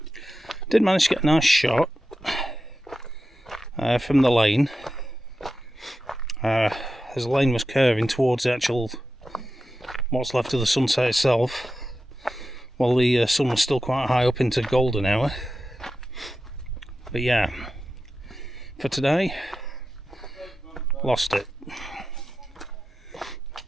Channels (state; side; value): normal; both; correlation 0.91